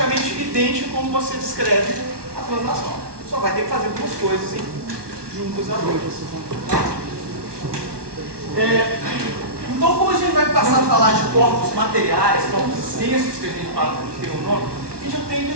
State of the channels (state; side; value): late; left; 1.2 ms